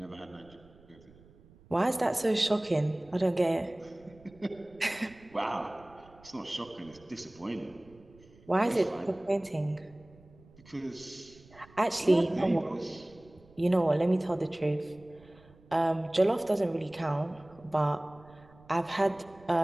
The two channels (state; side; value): noise; right; rumble, 25 dB below the sound